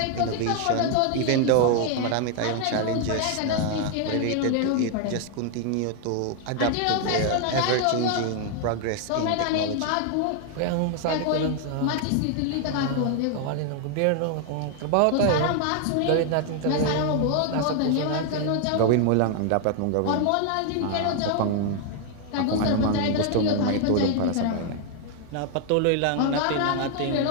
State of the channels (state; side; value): different; both; correlation 0.00